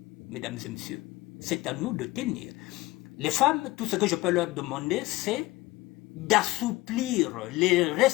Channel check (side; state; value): right; quieter; 19.8 dB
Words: mesdames et messieurs. C'est à nous de tenir. Les femmes, tout ce que je peux leur demander, c'est d'assouplir les